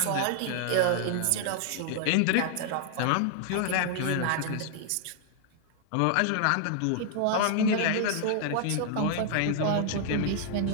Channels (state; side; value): different; both; correlation 0.00